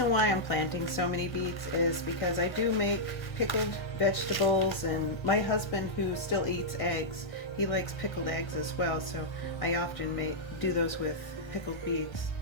why I'm planting so many beets is because I do make pickled vegetables, and my husband, who still eats eggs, he likes pickled eggs as well, so I often do those with pickled beets.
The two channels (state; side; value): late; right; 1.7 ms